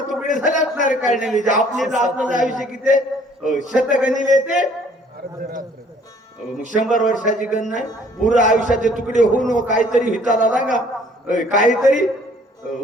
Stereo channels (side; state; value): both; normal; correlation 0.58